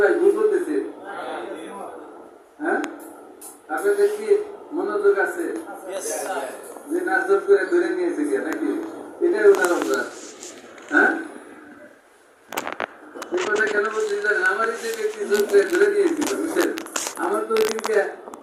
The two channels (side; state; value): both; identical; correlation 1.00